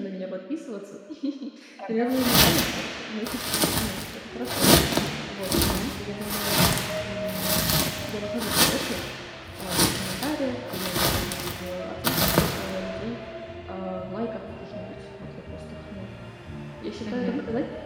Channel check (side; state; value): both; identical; correlation 1.00